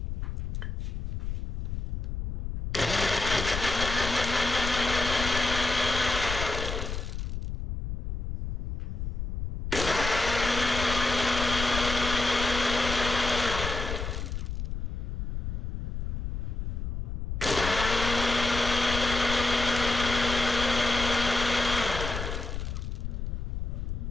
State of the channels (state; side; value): noise; left; rumble, 3 dB below the sound